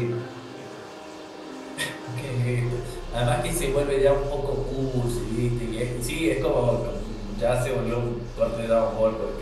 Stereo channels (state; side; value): identical; both; correlation 1.00